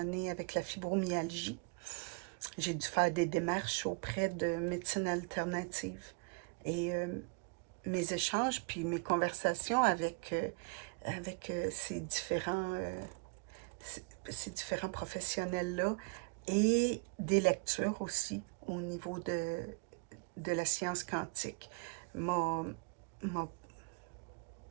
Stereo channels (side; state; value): left; quieter; 30.6 dB